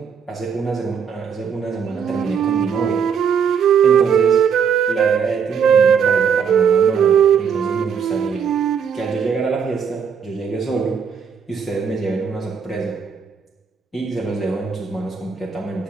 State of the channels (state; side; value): quieter; left; 6.8 dB